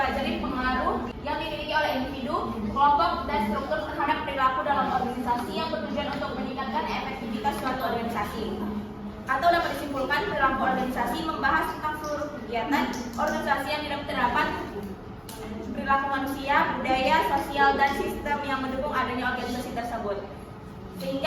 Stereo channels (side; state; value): both; identical; correlation 1.00